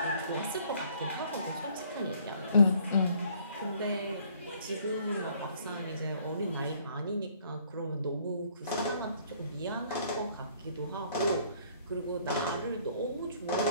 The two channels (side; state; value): both; inverted; correlation -0.61